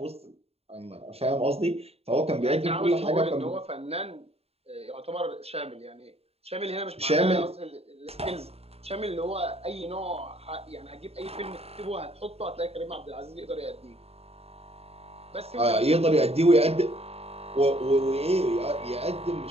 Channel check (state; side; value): late; left; 0.29 ms